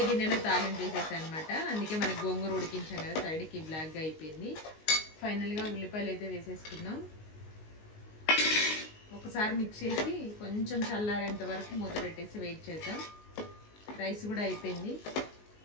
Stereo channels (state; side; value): late; right; 19 ms